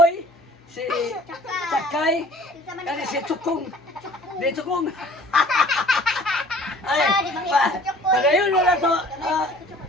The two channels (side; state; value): both; normal; correlation 0.51